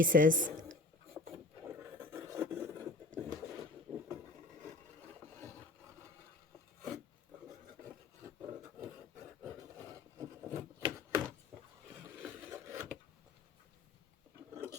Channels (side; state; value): right; quieter; 3.1 dB